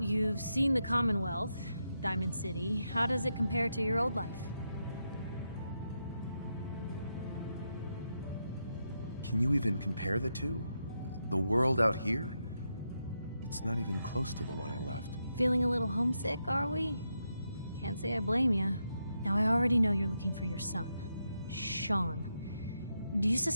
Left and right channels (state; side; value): inverted; both; correlation -0.84